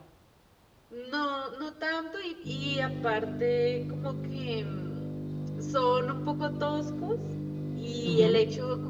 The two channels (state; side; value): identical; both; correlation 1.00